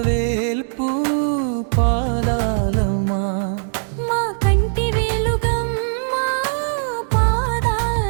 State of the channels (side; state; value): left; silent; digital silence